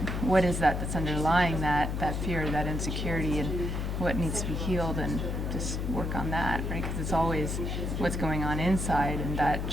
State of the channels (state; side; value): noise; left; hum, 2 dB below the sound